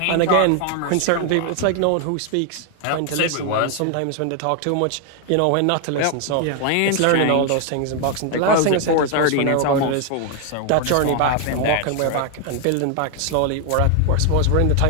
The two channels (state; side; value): different; both; correlation 0.00